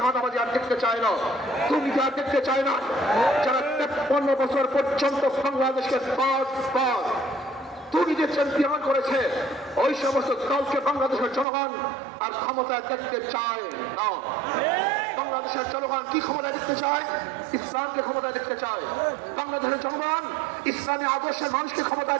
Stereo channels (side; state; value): left; drops out; at 11.5 s